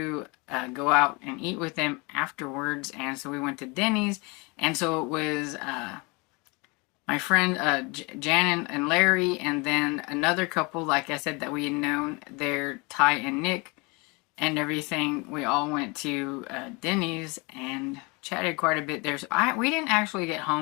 go out and eat with them afterwards, and so we went to Denny's, and so it was my friend Jan and Larry, and then another couple, like I said, that we had known, they're Ty and Nick and everything. We all went to Denny's and chatted quite a bit there. So we didn't actually get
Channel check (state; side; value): quieter; right; 28.0 dB